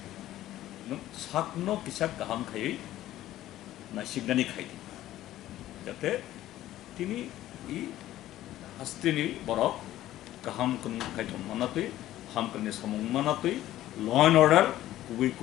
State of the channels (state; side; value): quieter; right; 14.1 dB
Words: নং সাকনো কিসাক গাহাম খাই না সিগনানি খাই যাতে তিনি ই হাস্তিনি বরক গাহাম কোন খাইতন মানাতই হামকনি সমং মানাতই ল এন্ড অর্ডার কুবি